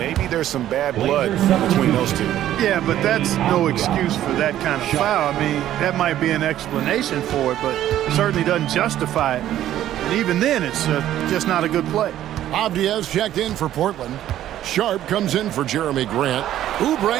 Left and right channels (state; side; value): quieter; left; 12.4 dB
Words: there's some bad blood between those two. Yeah, but that's no excuse for that kind of foul. I mean, that might be an explanation for it, but certainly doesn't justify it. And even then, it's just not a good play. Avdia's checked in for Portland. Sharp comes in for Jeremy Grant.